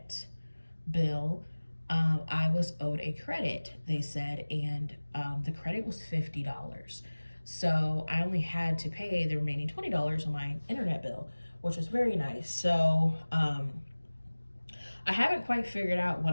bill, I was owed a credit, they said, and the credit was $50. So I only had to pay the remaining $20 on my internet bill, which was very nice. So I haven't quite figured out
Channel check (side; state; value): both; inverted; correlation -1.00